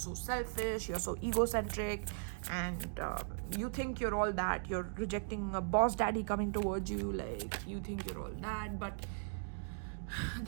selfish, you're so egocentric, and you think you're all that. You're rejecting a boss daddy coming towards you, like you think you're all that, but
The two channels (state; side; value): silent; left; digital silence